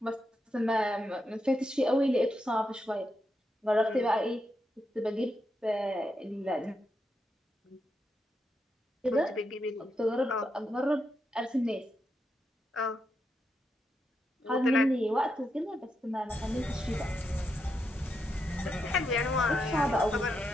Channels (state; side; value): normal; both; correlation 0.84